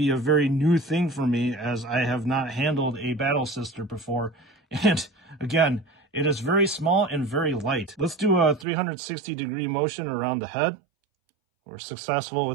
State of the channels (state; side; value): drops out; left; at 8.7 s